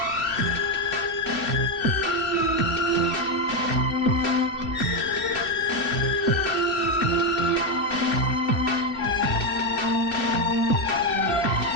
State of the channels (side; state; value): right; late; 2.7 ms